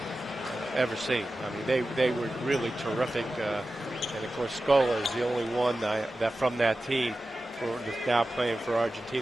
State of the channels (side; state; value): both; normal; correlation 0.94